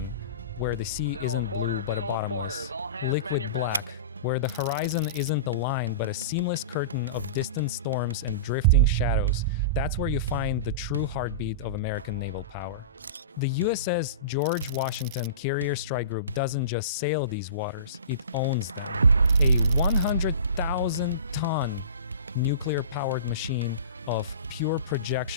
where the sea isn't blue but a bottomless, liquid black, where the horizon isn't a line but a seamless curtain of distant storms and drifting shadows, that's where you find the true heartbeat of American naval power. The USS George Washington Carrier Strike Group doesn't just sail these waters, it owns them. A 100,000-ton nuclear-powered machine of pure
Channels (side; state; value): both; inverted; correlation -0.32